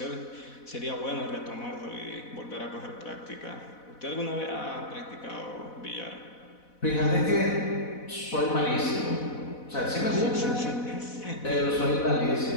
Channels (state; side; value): late; right; 4.1 ms